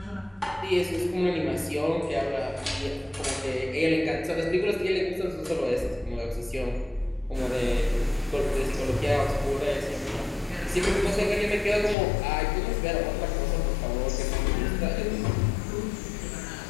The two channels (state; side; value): drops out; right; at 12.0 s